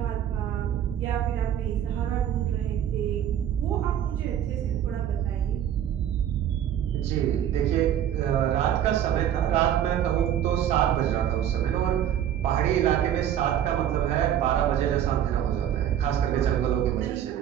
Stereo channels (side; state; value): left; quieter; 10.3 dB